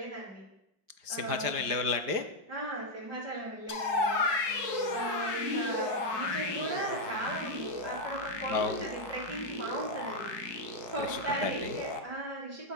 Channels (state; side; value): late; left; 5.0 ms